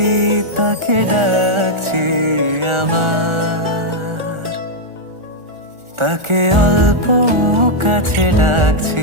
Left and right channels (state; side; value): late; left; 1.4 ms